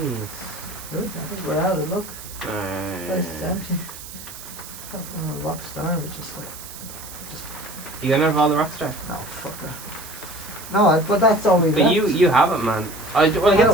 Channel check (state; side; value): noise; right; hiss, 14 dB below the sound